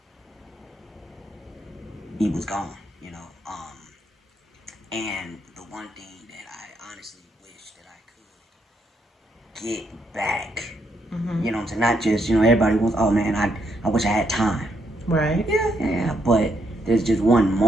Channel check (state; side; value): normal; both; correlation 0.76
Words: He was gone, and the one thing that I honestly wish that I could get back, you know what I'm saying? Not just, everybody wants, oh man, I wish I had time. Right. Yeah, but there's just one